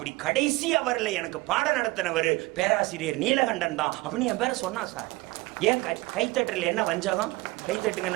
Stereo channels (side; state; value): left; quieter; 21.9 dB